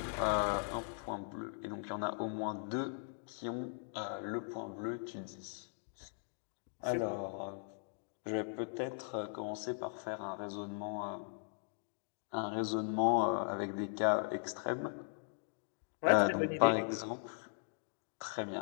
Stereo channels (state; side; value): silent; right; digital silence